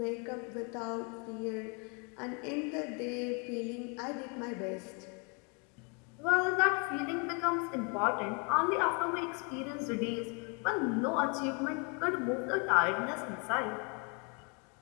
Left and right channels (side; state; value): right; quieter; 34.8 dB